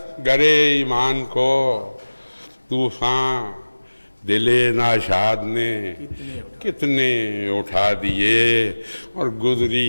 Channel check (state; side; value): inverted; both; correlation -1.00